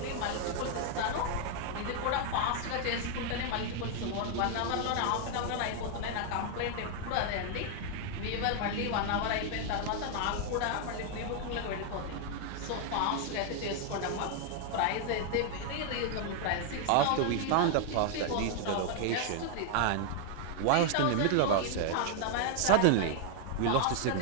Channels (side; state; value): both; different; correlation 0.00